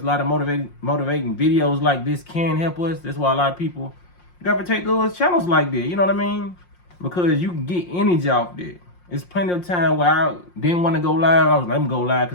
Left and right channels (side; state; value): right; late; 5.6 ms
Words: lot of motivating videos like this can help us. That's why a lot of people gravitate those channels like that. You know what I mean? Because you can get energy off there. It's plenty of time where I didn't want to go live. I was like, let me go live